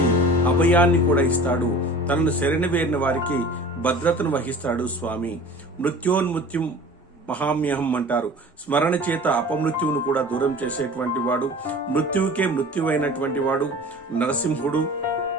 అభయాన్ని కూడా ఇస్తాడు. తనను శరణవేరిన వారికి భద్రతను వహిస్తాడు స్వామి. మృత్యోన్మృత్యుం మహామ్యహం అంటారు. స్మరణ చేత అపమృత్యువును కూడా దూరం చేసేటువంటి వాడు, మృత్యువుకే మృత్యువైనటువంటి వాడు నరసింహుడు.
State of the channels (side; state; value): both; normal; correlation 0.41